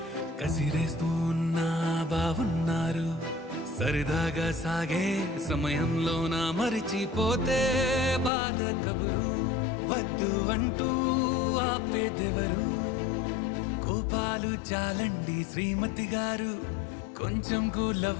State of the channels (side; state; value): right; drops out; at 8.3 s